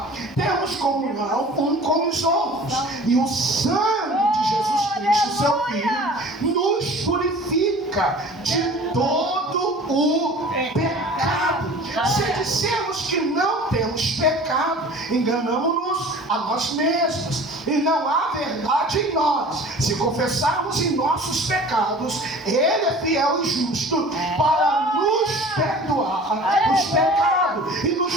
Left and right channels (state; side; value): normal; both; correlation 0.43